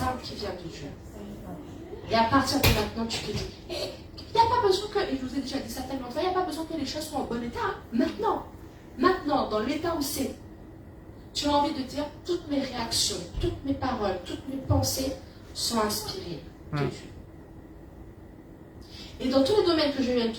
armes qui viennent de Dieu. Et à partir de maintenant, tu te dis, il n'y a pas besoin que, et je vous ai déjà dit ça tellement de fois, il n'y a pas besoin que les choses soient en bon état. Hein. Maintenant, dans l'état où c'est, tu as envie de dire, toutes mes réactions, toutes mes paroles, toutes mes pensées sont inspirées de Dieu. Et dans tous les domaines que je viens de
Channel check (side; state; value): both; identical; correlation 1.00